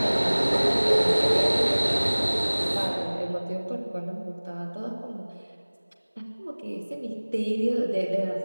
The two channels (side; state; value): both; inverted; correlation -1.00